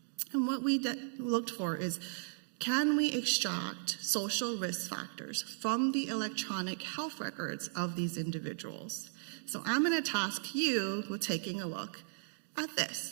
And what we looked for is, can we extract social risk factors from the electronic health records of these individuals? So I'm going to task you with taking a look at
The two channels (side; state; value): left; silent; digital silence